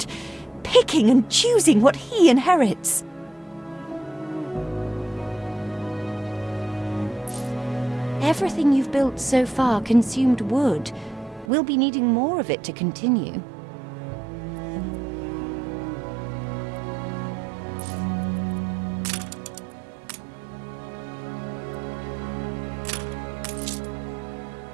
Picking and choosing what he inherits. Everything you've built so far consumed wood. We'll be needing more of it to continue.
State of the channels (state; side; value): drops out; left; at 11.5 s